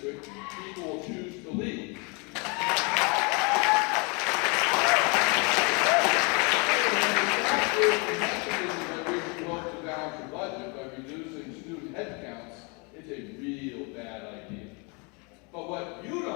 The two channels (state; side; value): quieter; right; 31.8 dB